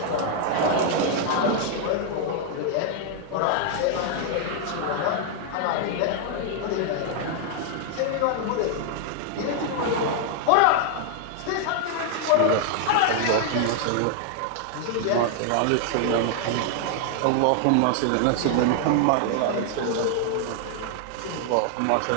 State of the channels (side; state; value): both; different; correlation 0.00